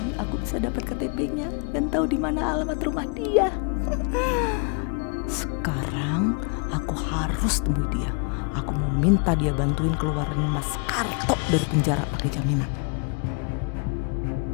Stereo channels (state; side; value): quieter; right; 36.6 dB